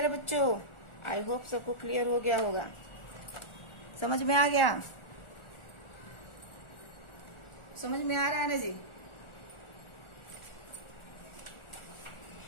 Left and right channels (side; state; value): right; late; 1.4 ms